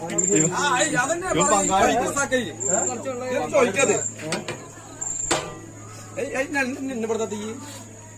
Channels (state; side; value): identical; both; correlation 1.00